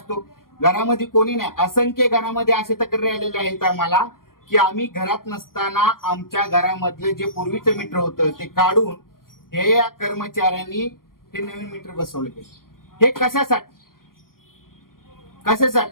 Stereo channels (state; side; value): late; right; 0.91 ms